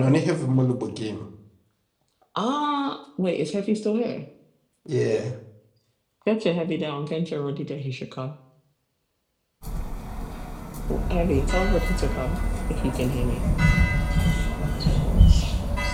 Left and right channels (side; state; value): both; identical; correlation 1.00